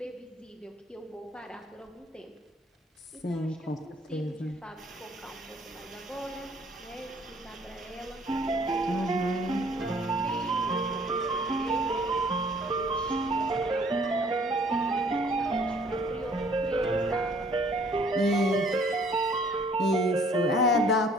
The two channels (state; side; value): normal; both; correlation 0.58